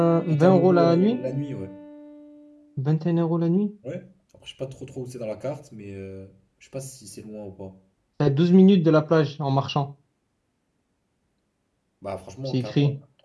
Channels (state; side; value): identical; both; correlation 1.00